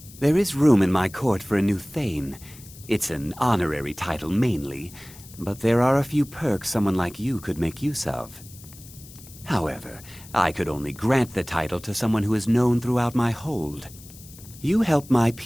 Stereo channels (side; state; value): left; noise; hiss, 19 dB below the sound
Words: There is room in my court for a new Thane. It's an honorary title mainly, but there are a few perks someone like you could make use of. However, I could only grant the title to someone who is known throughout my hold. You help my